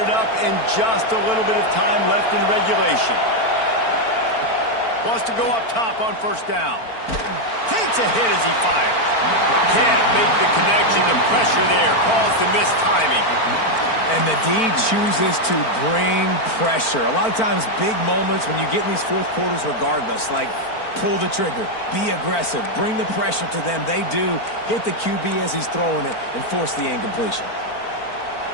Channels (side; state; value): right; late; 4.4 ms